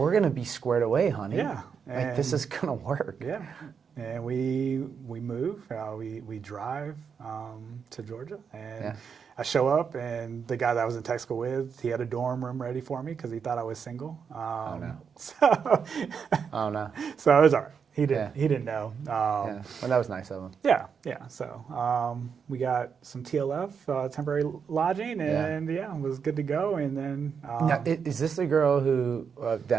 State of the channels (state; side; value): quieter; left; 6.5 dB